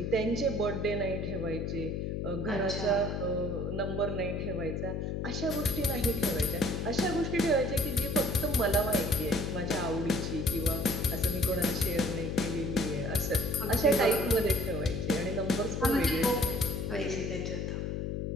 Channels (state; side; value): noise; left; hum, 2 dB below the sound